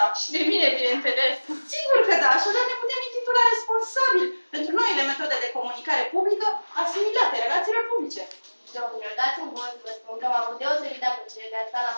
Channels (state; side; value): inverted; both; correlation -1.00